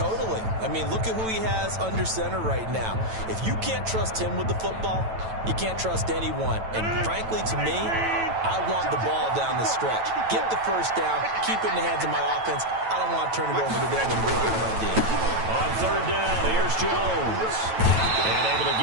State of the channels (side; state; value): left; late; 9.1 ms